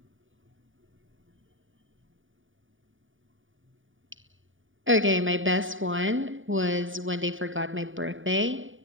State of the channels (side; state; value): left; late; 0.57 ms